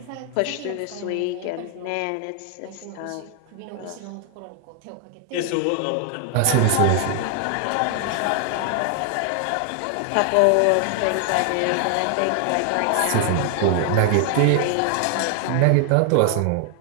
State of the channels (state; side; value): different; both; correlation 0.00